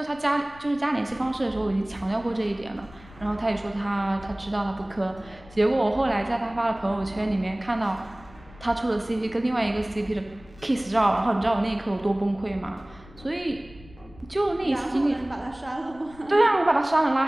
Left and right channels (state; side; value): noise; left; rumble, 22 dB below the sound